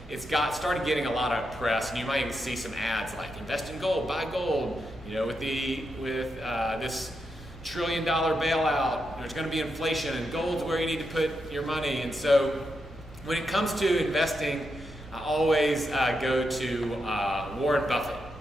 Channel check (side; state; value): both; normal; correlation 0.84